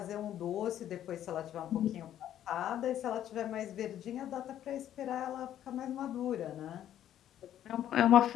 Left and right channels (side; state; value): right; quieter; 11.3 dB